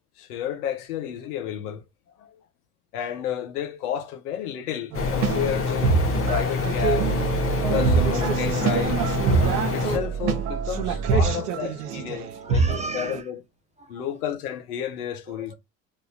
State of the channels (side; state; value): both; normal; correlation 0.29